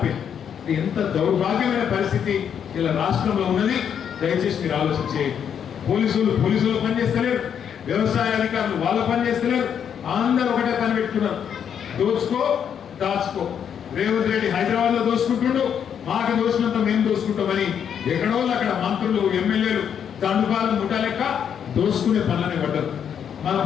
ఎంత దౌర్భాగ్యమైన పరిస్థితి ఇలా రాష్ట్రంలో ఉన్నది. దయచేసి మీరు ఆలోచించేయండి. పోలీసులు పనిచేస్తలేరు, వ్యవసాయ అధికారులు వాళ్ళు పనిచేస్తలేరు, అందరూ ఒకటే పని పెట్టుకున్నారు, దోచుకో దాచుకో. రేవంత్ రెడ్డి హైదరాబాద్ లో దోచుకుంటుండు, మాకు దోచినంత మేము దోచుకుంటామని ఎక్కడో అక్కడ మంత్రులు, ఎమ్మెల్యేలు దండుపాలు ముఠా లెక్క దోచుకునే పనులనే పడ్డారు. మనం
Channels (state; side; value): quieter; right; 8.2 dB